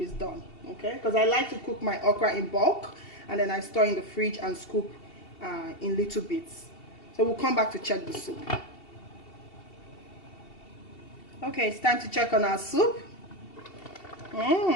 is done. Okay, because I like to cook my okra in bulk, and then I store in the fridge and scoop in little bits. So we'll come back to check the soup. Okay, it's time to check on our soup.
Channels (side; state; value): right; late; 2.7 ms